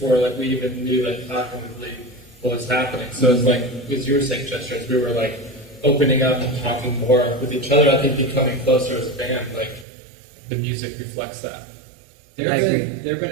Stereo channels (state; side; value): drops out; left; at 9.9 s